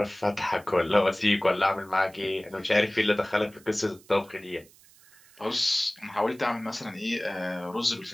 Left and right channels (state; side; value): noise; right; hiss, 26 dB below the sound